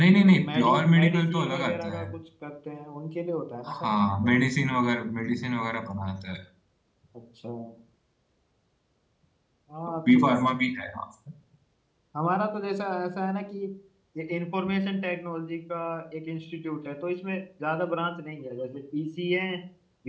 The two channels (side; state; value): both; identical; correlation 1.00